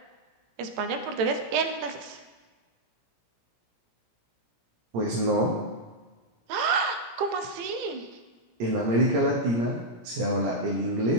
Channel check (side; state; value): left; late; 18 ms